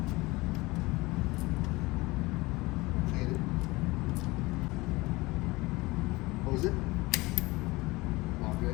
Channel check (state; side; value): quieter; right; 22.0 dB